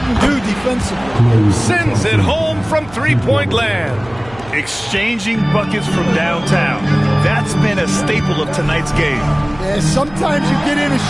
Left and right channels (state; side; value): noise; right; hum, 21 dB below the sound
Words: do defensively. Sends it home from three-point land. Exchanging buckets from downtown. That's been a staple of tonight's game. Yeah, sometimes you get in a